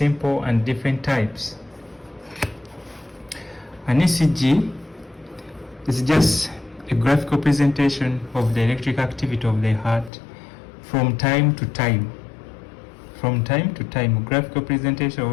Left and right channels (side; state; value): right; drops out; at 10.1 s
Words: and different types. An ECG is just a graphical presentation of the electric activity of the heart from time to time. From time to time, graphical presentation